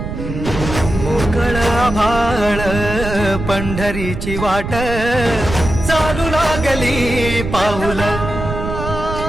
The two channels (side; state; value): right; noise; rumble, 6 dB below the sound